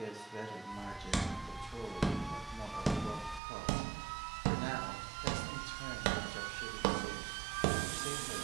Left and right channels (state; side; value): drops out; left; at 3.4 s